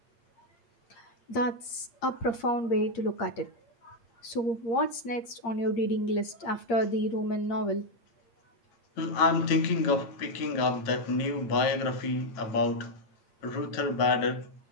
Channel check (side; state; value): right; late; 8.6 ms